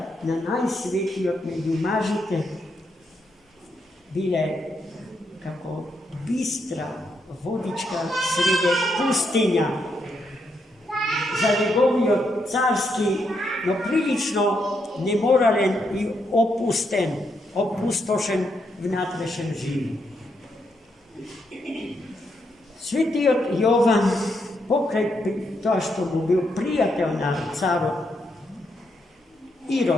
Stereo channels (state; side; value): normal; both; correlation 0.79